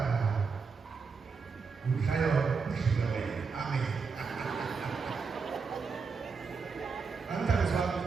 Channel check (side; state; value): left; quieter; 5.1 dB